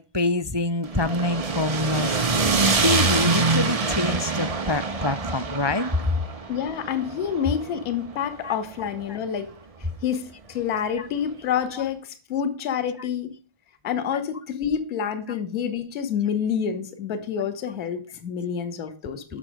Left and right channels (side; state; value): left; late; 1.7 ms